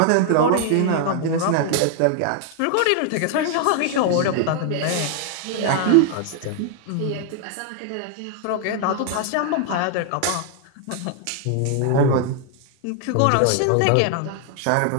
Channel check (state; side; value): different; both; correlation 0.00